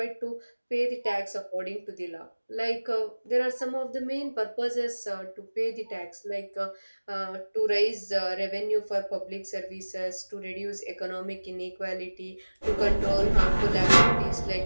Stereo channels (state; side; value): inverted; both; correlation -1.00